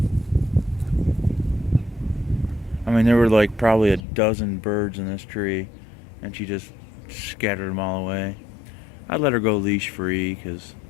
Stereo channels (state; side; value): drops out; right; at 4.0 s